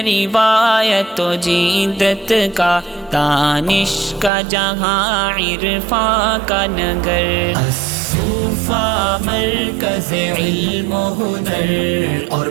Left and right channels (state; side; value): drops out; left; at 4.3 s